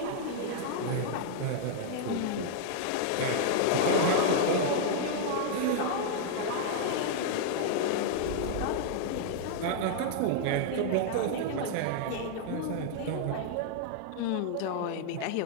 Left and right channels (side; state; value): both; different; correlation -0.01